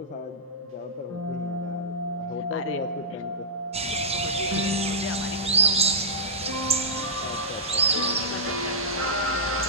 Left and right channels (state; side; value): normal; both; correlation -0.15